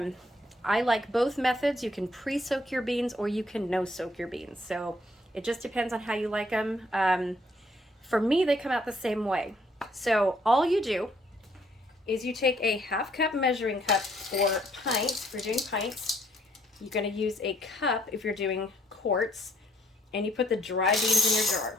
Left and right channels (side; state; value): both; normal; correlation 0.67